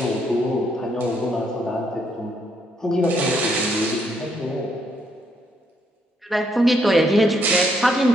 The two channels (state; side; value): normal; both; correlation 0.73